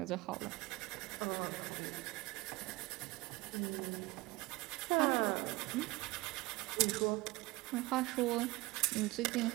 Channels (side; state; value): left; quieter; 22.1 dB